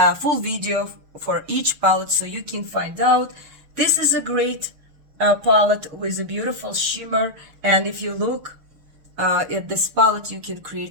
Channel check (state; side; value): late; left; 6.6 ms